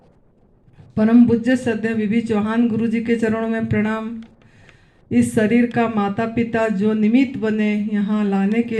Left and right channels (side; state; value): both; identical; correlation 1.00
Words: परम पूज्य श्रद्धेय बीबी चौहान गुरु जी के चरणों में प्रणाम। इस शरीर का माता पिता जो निमित्त बने यहाँ लाने के